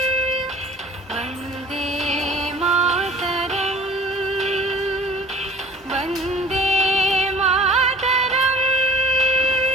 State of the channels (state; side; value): normal; both; correlation 0.49